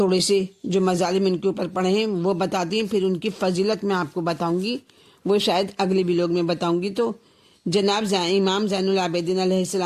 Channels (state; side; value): identical; both; correlation 1.00